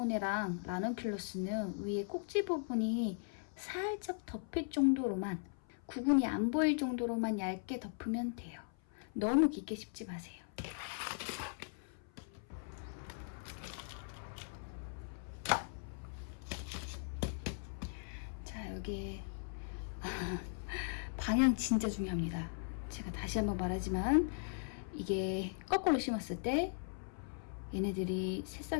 라넌큘러스는 위에 꼭지 부분이 살짝 덮일 정도로만, 구근이 안 보일 정도로만 얇게 덮으면 돼요. 너무 깊게 씹지 마세요. 자, 여기에 방향 진짜 중요합니다. 제가 다시 한번 말하지만 이게 거꾸로 심었을 때 얘네들이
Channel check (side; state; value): right; silent; 52 dB below the other